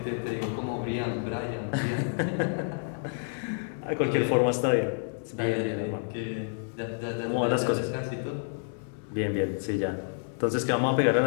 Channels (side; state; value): right; silent; 58 dB below the other